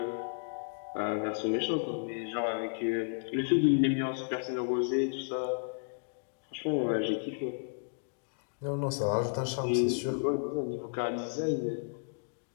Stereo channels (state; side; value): silent; right; digital silence